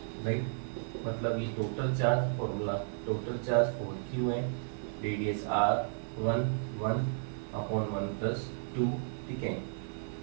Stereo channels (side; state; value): left; silent; 55 dB below the other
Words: right. मतलब ये total charge formula, total charge 4Q है, रेडियस R1 1 अपॉन 1 प्लस 2, ठीक है।